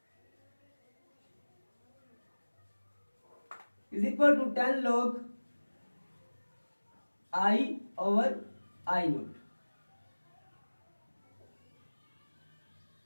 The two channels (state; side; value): inverted; both; correlation -1.00